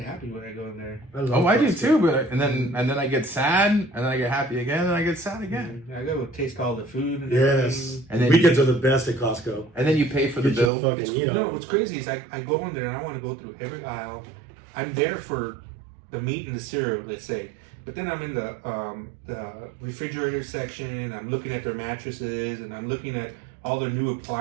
when I go in there. I do too. But and then I get sad, and then I get happy again, and I get sad again. I go taste all the food. And yes, and then weekends are the best at Costco. And then you pay for the bill. What's crazy is I go in there and I want to go through every aisle. I'm there for the meat and the cereal, let's say. But then I'm in the refrigerator section, and I'm looking at their mattresses, and I'm looking at all the new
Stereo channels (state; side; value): drops out; left; at 10.7 s